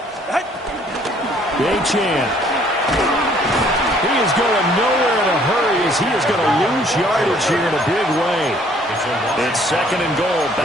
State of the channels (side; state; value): both; normal; correlation 0.60